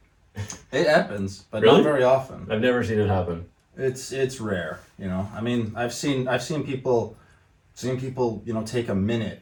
It happens, but Really? not very often. I've never seen it happen. It's rare, I mean, I've seen people, take a minute,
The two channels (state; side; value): identical; both; correlation 1.00